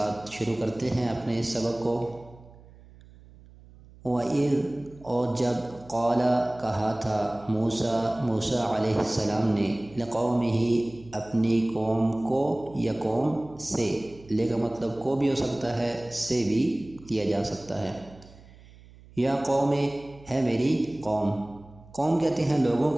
شروع کرتے ہیں اپنے اس سبق کو۔ وَإِذْ، اور جب قال کہا تھا موسیٰ علیہ السلام نے لقومہ اپنی قوم کو، یا قوم سے، لے کا مطلب کو بھی ہو سکتا ہے، سے بھی دیا جا سکتا ہے۔ یا قوم ہے میری قوم، قوم کہتے ہیں لوگوں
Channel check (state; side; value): noise; right; hum, 22 dB below the sound